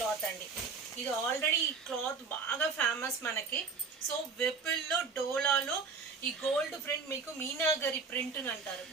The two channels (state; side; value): quieter; left; 4.8 dB